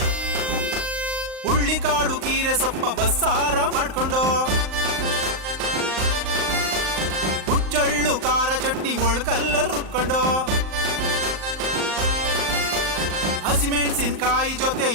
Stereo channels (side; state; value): left; late; 38 ms